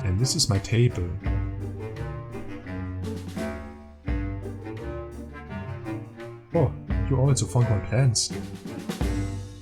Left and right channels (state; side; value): identical; both; correlation 1.00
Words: And this is my table. Oh, you also found my plans.